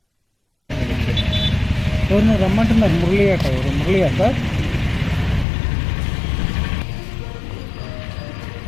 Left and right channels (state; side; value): drops out; right; at 5.5 s